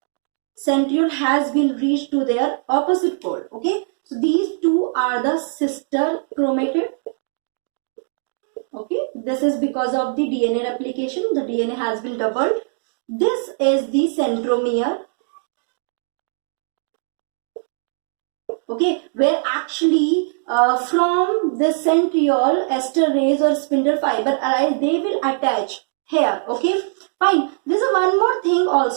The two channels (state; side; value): silent; left; digital silence